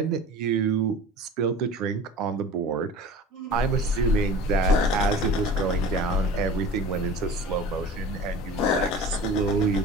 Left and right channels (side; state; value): both; normal; correlation 0.38